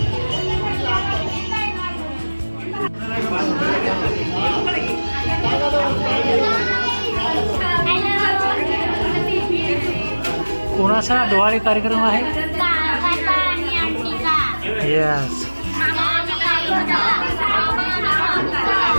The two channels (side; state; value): both; inverted; correlation -1.00